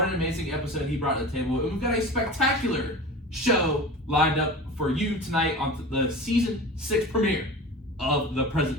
an amazing episode he brought to the table. And we've got a spectacular show lined up for you tonight on the Season 6 premiere of The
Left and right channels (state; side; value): normal; both; correlation 0.34